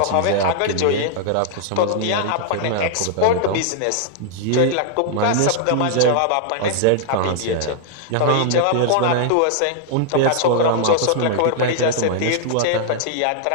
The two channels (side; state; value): both; different; correlation -0.01